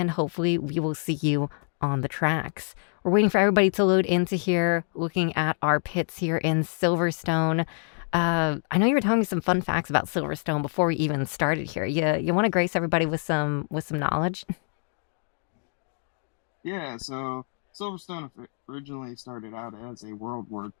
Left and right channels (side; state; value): right; silent; digital silence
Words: hopefully we will see you on the tracks. We're waiting for everybody to load into here, looking at our pits here in Silverstone. I know you were telling me some fun facts about Silverstone before we even started here. You want to grace everybody with some knowledge? Yeah, so Silverstone originally started out as a World War